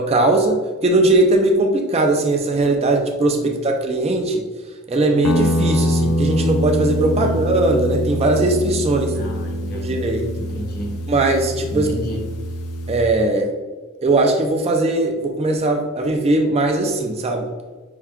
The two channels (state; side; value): normal; both; correlation 0.41